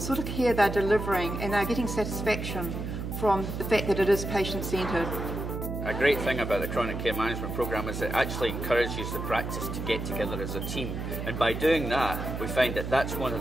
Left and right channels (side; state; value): right; noise; hum, 5 dB below the sound